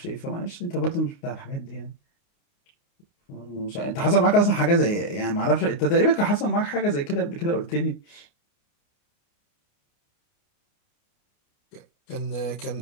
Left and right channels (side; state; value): right; late; 29 ms